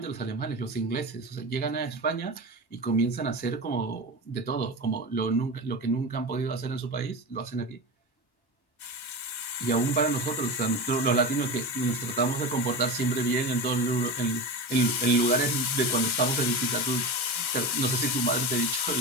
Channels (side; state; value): right; late; 1.3 ms